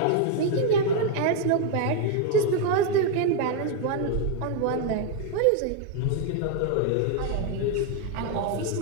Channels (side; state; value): both; different; correlation 0.01